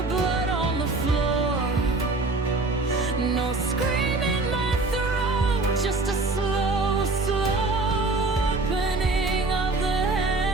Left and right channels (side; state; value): left; quieter; 3.3 dB